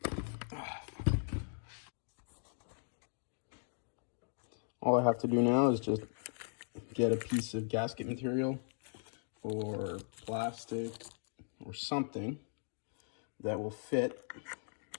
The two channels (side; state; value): right; silent; digital silence